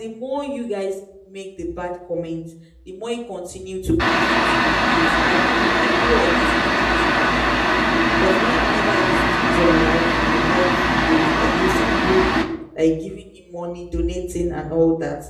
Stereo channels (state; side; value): identical; both; correlation 1.00